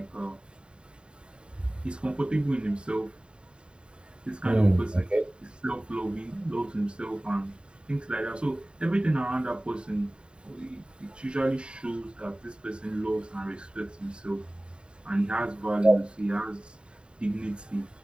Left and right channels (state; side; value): late; left; 0.051 ms